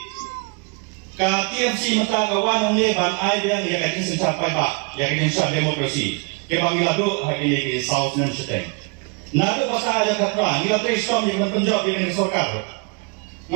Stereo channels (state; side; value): quieter; left; 32.4 dB